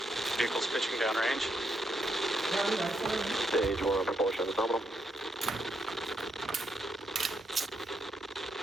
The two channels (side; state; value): both; normal; correlation 0.79